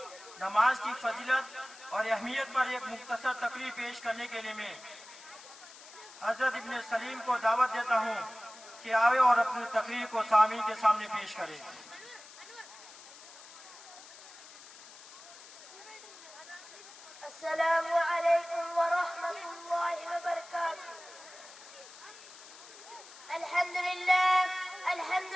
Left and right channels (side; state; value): left; noise; hiss, 18 dB below the sound